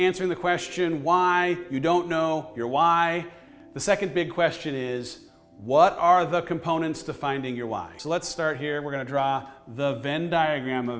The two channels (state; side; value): identical; both; correlation 1.00